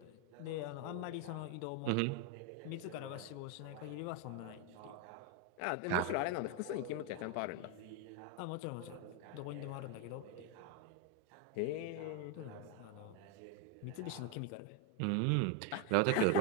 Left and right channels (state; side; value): different; both; correlation 0.02